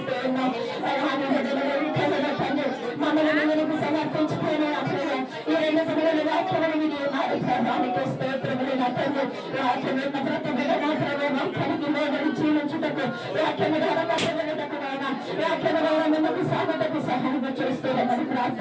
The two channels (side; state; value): both; identical; correlation 1.00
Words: ఉన్నాం. మమ్మల్ని నీకు సమర్పించుకునే ఈ 2 దినాల వాక్యములు వినియోగానికి స్తోత్రములు తండ్రి. వాక్యమున్న ప్రతి బిడ్డ మాత్రమే వాక్యానికి లోబడి జీవించుటకు వాక్యము ద్వారా కట్టబడుటకునైనా వాక్యము ద్వారా మిమ్మల్ని సాగుటకు సహాయం చేస్తున్నామని